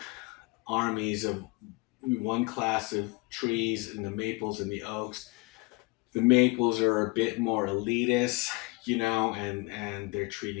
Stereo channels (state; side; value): quieter; right; 26.8 dB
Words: armies of one class of trees and the maples and the oaks. The maples are a bit more elitist, and they're